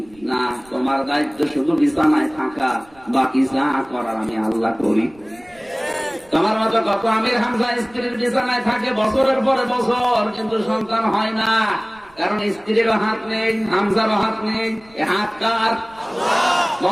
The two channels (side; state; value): right; noise; rumble, 28 dB below the sound